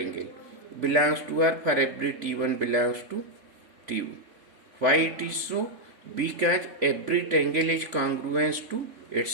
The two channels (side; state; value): left; late; 3.5 ms